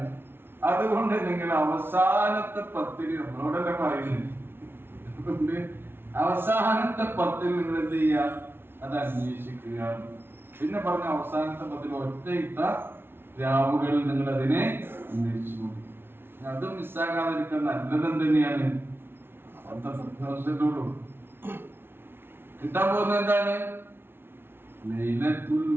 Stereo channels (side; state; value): left; late; 0.11 ms